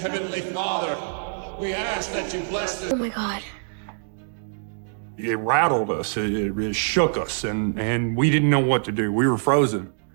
Father, we ask that you bless them. Oh my God. It rattled us, it shook us, and we didn't know what to do. We were frozen.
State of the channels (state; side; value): silent; left; digital silence